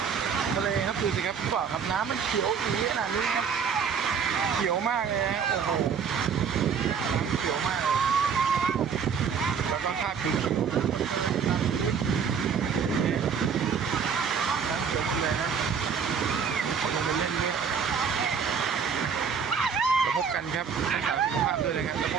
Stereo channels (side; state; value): left; quieter; 6.7 dB